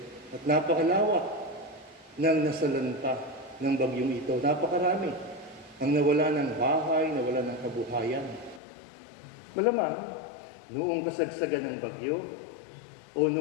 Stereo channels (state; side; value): drops out; right; at 8.6 s